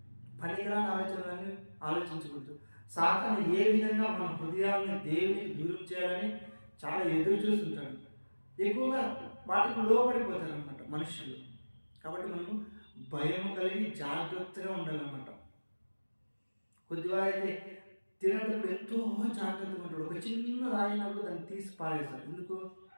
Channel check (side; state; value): both; inverted; correlation -1.00